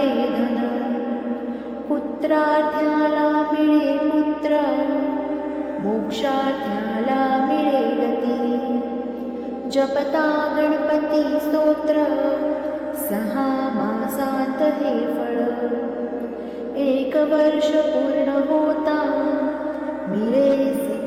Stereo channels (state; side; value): identical; both; correlation 1.00